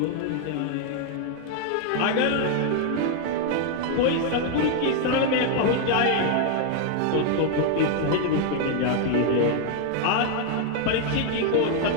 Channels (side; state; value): both; different; correlation 0.00